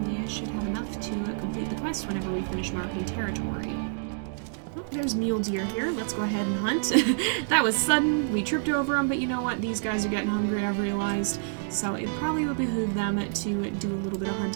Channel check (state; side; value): silent; left; digital silence